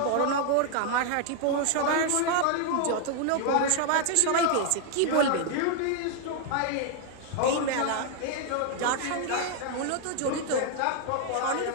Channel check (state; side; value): different; both; correlation 0.00